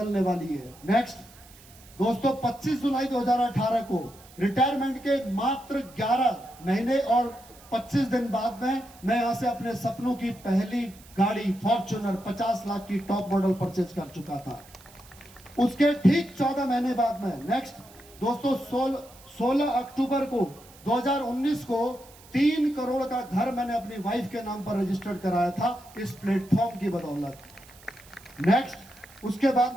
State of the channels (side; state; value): right; noise; hiss, 23 dB below the sound